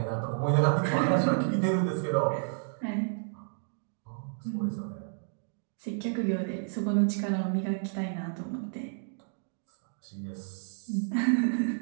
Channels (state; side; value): silent; left; digital silence